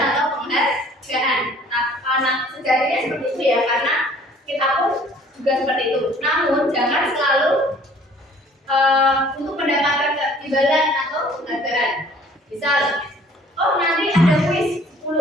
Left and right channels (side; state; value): both; normal; correlation 0.54